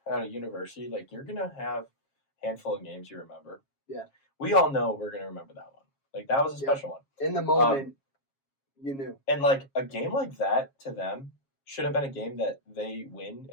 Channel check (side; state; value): right; late; 7.3 ms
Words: at a university, like, you're going to have a handful of games you remember. Yeah. We all know we're going to remember that one. Like, that was a special one. In the moment, you knew. And, like, a game like that to them should have been a game that they win